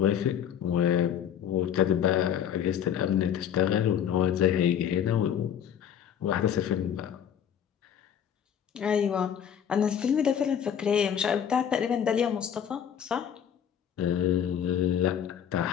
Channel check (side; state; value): right; quieter; 8.9 dB